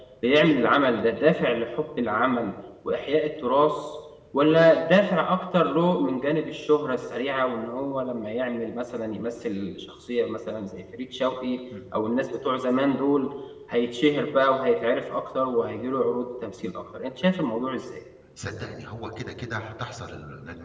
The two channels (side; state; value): both; identical; correlation 1.00